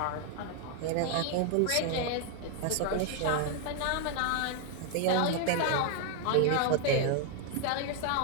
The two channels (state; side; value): different; both; correlation 0.00